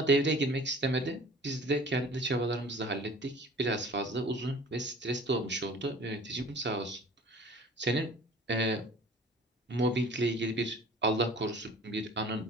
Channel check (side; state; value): both; normal; correlation 0.46